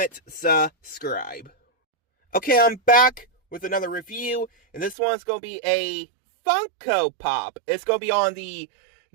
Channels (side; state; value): left; drops out; at 5.0 s